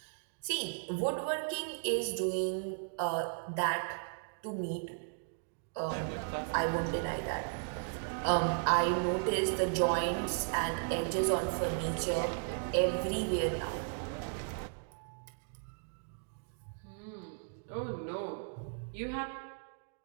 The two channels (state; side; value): silent; left; digital silence